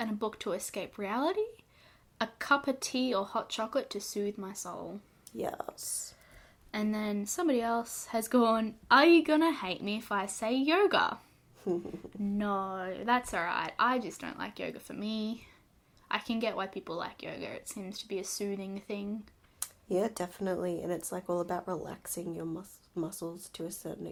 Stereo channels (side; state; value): both; identical; correlation 1.00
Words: a book to escape reality. A cup of tea or hot chocolate to soothe my soul. Yes. And then somebody else has gone, are you gonna hate me if I say yoga? No, that's alright. I just don't like yoga for me. I can get why people like yoga. It seems to be a soothing thing. Yeah, definitely. And it's like all about relaxing your muscles to a certain